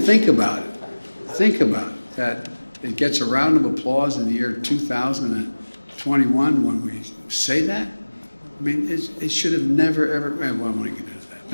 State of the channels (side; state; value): both; inverted; correlation -1.00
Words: about it. Think about it, that it gets a round of applause in the year 2021 when we say that. I mean, it should have never, ever, well, I don't want to get into that.